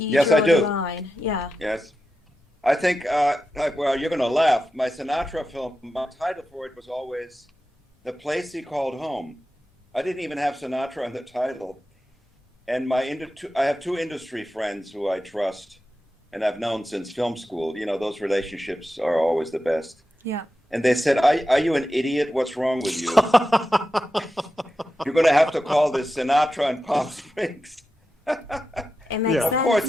you Yes, draw I do. the line? Yeah. Yes. I think, well, you're going to laugh. My Sinatra film, my title for it was always The Place He Called Home. I didn't even have Sinatra in the title. And I have 2 industry friends who I trust and I've known since film school. Those relationships are always the best. Yeah. And they said, are you an idiot? What's wrong with you? You're going to have to call this Sinatra and Palm Springs. It makes Yeah. sense, Of course, it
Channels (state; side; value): normal; both; correlation 0.90